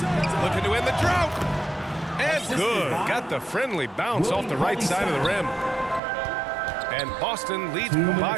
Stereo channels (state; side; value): drops out; left; at 6.0 s